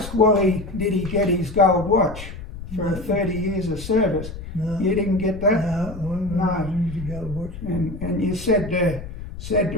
Wally, did he get his gold watch for 30 years of service? No. You didn't get that? No. Gold watch. And you said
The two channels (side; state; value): left; noise; rumble, 11 dB below the sound